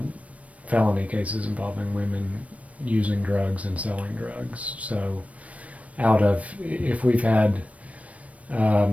felony cases involving women using drugs and selling drugs. So if we've had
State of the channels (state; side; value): late; left; 0.066 ms